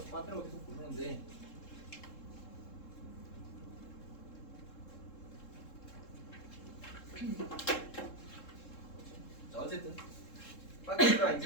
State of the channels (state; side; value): late; right; 3.7 ms